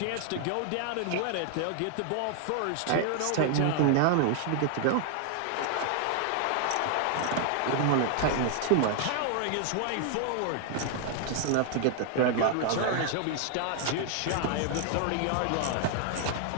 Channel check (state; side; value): different; both; correlation 0.00